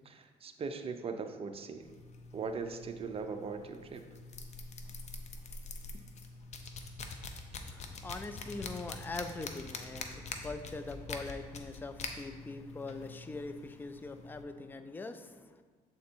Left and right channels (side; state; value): both; normal; correlation 0.55